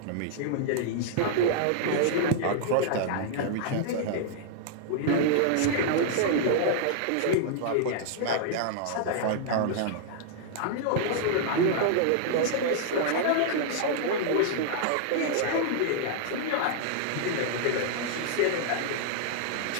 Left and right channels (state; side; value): different; both; correlation -0.01